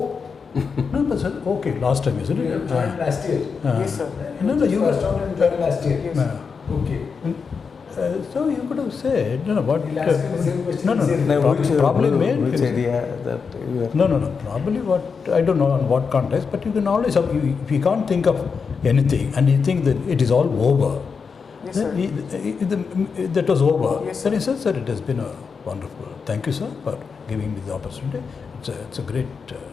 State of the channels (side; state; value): right; quieter; 5.5 dB